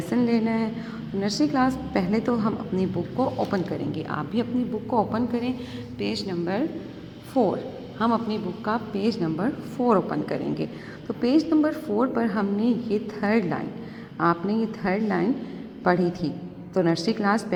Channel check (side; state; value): both; identical; correlation 1.00